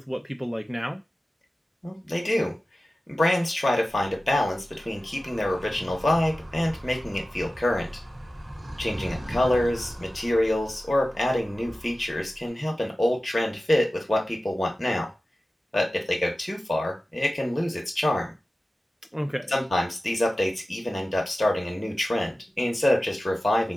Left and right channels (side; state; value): both; normal; correlation 0.96